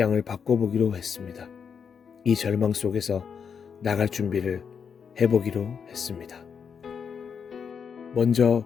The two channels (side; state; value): right; quieter; 6.7 dB